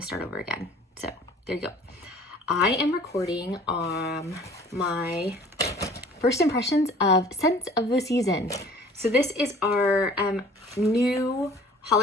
over again. So there you go. I am recording my first impressions of Scents of the Season. So this is our new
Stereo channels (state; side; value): normal; both; correlation 0.50